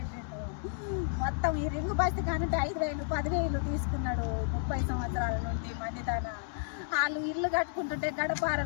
మొత్తం ఈ రింగు బస్తి కానుంటే 5,000 10,000 తీసుకున్నాడు 30 సంవత్సరాల నుండి మంది తన. వాళ్ళు ఇల్లు కట్టుకుంటుంటే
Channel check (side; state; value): right; silent; digital silence